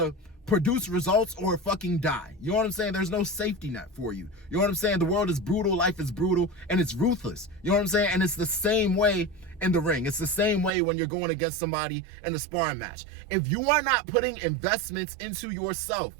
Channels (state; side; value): drops out; left; at 10.7 s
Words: produce results or fucking die. You know what I'm saying? There's no safety net for you. You know what I'm saying? The world is brutal, life is brutal, and it's ruthless. You know what I'm saying? And it's the same way in the ring. It's the same way when you're going against somebody in a sparring match. If you are not putting investments into yourself